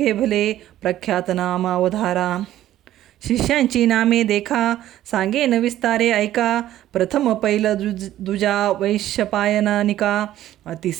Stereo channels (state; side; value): quieter; left; 13.2 dB